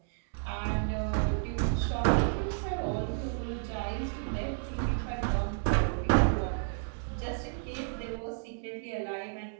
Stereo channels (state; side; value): silent; left; digital silence